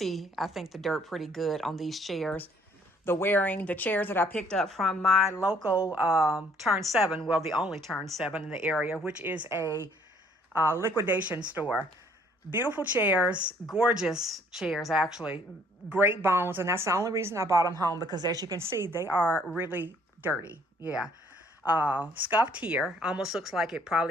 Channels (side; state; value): both; normal; correlation 0.62